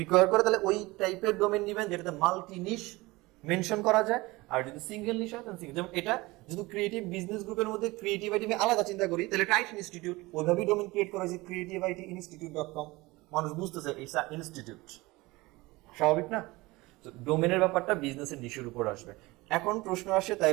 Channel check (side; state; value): left; quieter; 21.6 dB